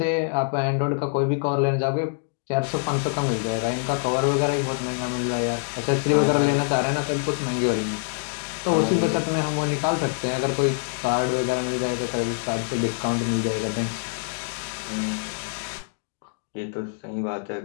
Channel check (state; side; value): silent; right; digital silence